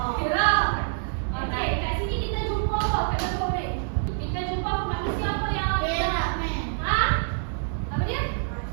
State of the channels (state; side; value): silent; left; 61 dB below the other